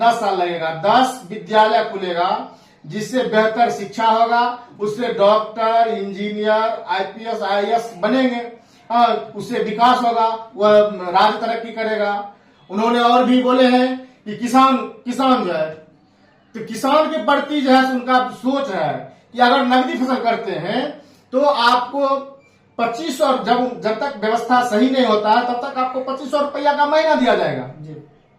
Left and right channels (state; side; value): identical; both; correlation 1.00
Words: साल लगेगा। 10 विद्यालय खुलेगा जिससे बेहतर शिक्षा होगा, उससे डॉक्टर, इंजीनियर, IPS, IAS बनेंगे, उससे विकास होगा, वह राज्य तरक्की करेगा। उन्होंने और भी बोले हैं कि किसान जो है तो किसान के प्रति जो है उनका सोच है कि अगर नकदी फसल करते हैं तो आपको 2500, जब तक व्यवस्था सही नहीं होता है तब तक आपको 2500 रुपया का महीना दिया जाएगा जी।